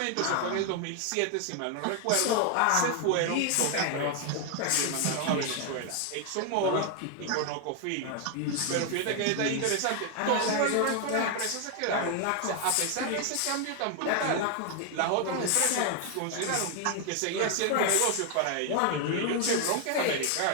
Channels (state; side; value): different; both; correlation 0.00